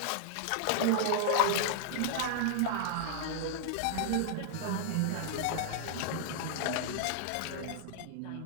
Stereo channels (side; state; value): both; different; correlation 0.00